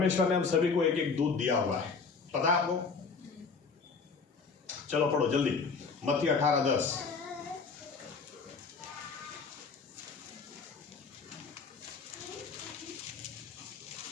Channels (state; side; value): quieter; right; 4.9 dB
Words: ने हम सभी को एक एक दूत दिया हुआ है, पता है आपको? चलो पढ़ो जल्दी, मत्ती 18:10।